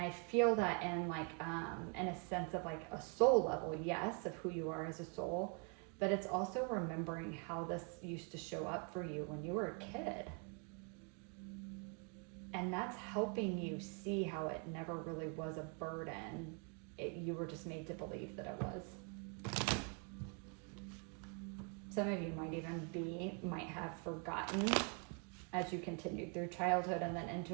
feel that in like in a sense of like a soul level, yes, of who you are as a soul, but it's also remembering how this used to show up for you when you were a kid. And that's helping you see how it never really was a burden. You were just made to believe that it was. Some of you might have forgotten as you continued through childhood and then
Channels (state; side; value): quieter; left; 38.3 dB